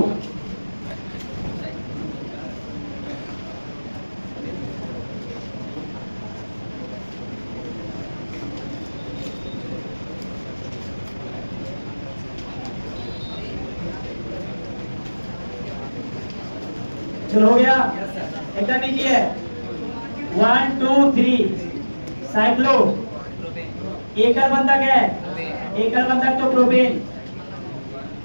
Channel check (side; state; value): both; inverted; correlation -1.00